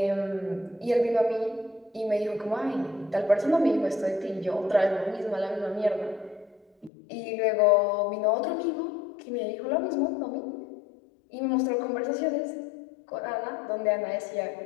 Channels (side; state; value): right; drops out; at 6.9 s